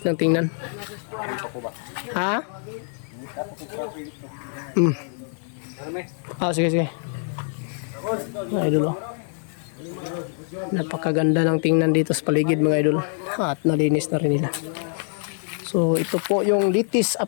ng tingnan. Ha? Sige mga idol, napakaganda ng tingnan dito sa paligid mga idol at nalinis na rin nila. So ito po yung latest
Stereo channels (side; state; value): right; silent; 61 dB below the other